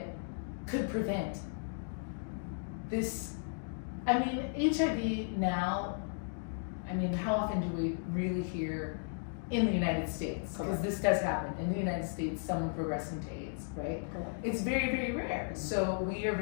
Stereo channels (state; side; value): silent; right; digital silence